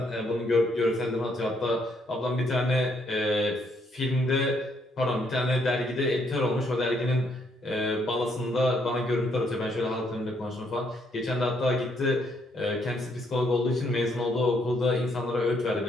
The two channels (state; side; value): normal; both; correlation 0.72